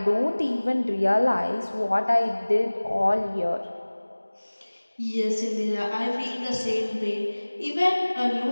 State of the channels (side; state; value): both; inverted; correlation -1.00